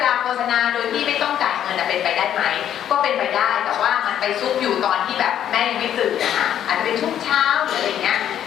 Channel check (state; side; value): quieter; right; 10.3 dB